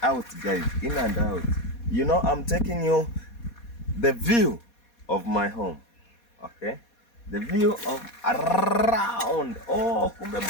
out, guys. In and out. You know, I'm taking you the view of my home. Okay, the view of around. Oh, kumbe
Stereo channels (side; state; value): right; late; 4.2 ms